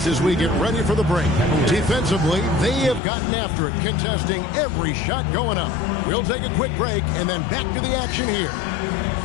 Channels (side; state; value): right; drops out; at 3.0 s